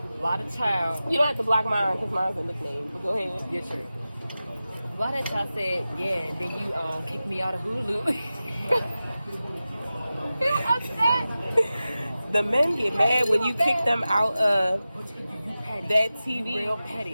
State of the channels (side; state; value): both; inverted; correlation -0.95